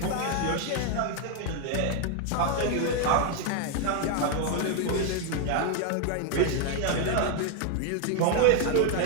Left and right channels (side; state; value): both; different; correlation 0.01